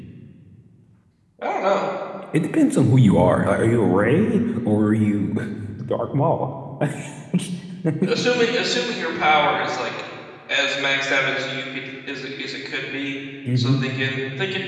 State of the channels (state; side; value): identical; both; correlation 1.00